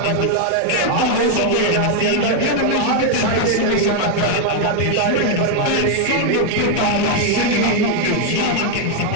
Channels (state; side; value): different; both; correlation 0.00